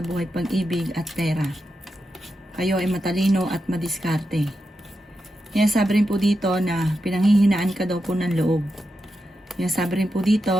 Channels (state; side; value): normal; both; correlation 0.88